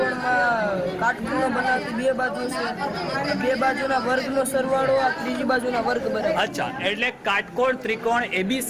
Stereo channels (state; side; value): identical; both; correlation 1.00